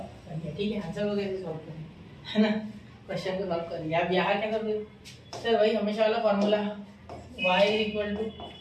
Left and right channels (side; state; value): both; identical; correlation 1.00